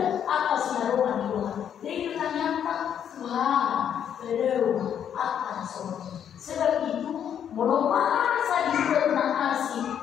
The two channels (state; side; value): quieter; right; 9.0 dB